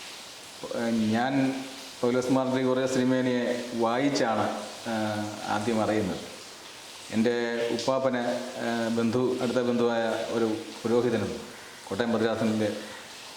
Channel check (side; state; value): both; identical; correlation 1.00